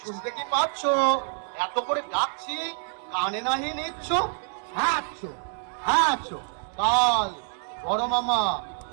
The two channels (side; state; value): left; silent; 60 dB below the other